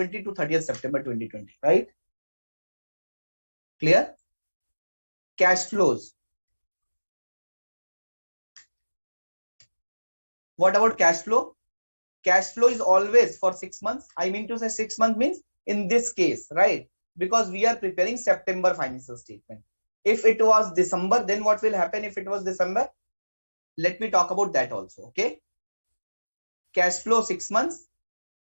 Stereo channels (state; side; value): inverted; both; correlation -1.00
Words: to 30th September 2020, right? Clear? Cash flows. What about cash flow? Cash flow is always for 6 months. I mean to say 6 months means in this case, right? Because we are preparing September financial statement. If it was December, then what will happen if it was December? Let me talk about that also, okay? Cash flow 6 months.